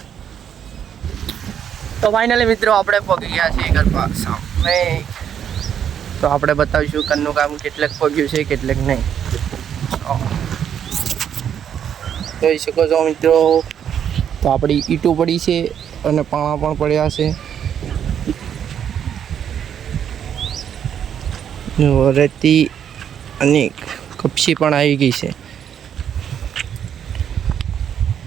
તો ફાઇનલી મિત્રો આપણે પહોંચી ગયા છીએ ઘર સામે. તો આપણે બતાવીશું ઘરનું કામ કેટલેક પગ્યું છે કેટલેક નહીં. જોઈ શકો છો મિત્રો, તો આપણી ઈંટો પડી છે અને પાણા પણ પડ્યા છે. રેતી અને કપસી પણ આવી ગઈ છે.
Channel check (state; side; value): quieter; left; 8.9 dB